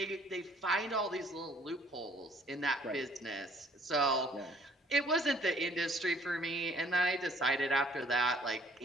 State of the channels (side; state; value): both; normal; correlation 0.59